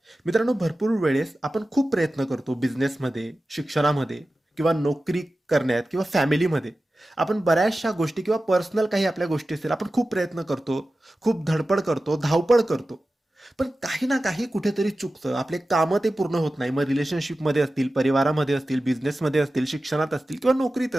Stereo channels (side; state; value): both; normal; correlation 0.95